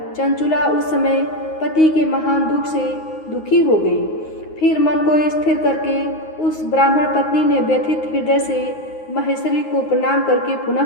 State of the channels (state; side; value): late; right; 9.5 ms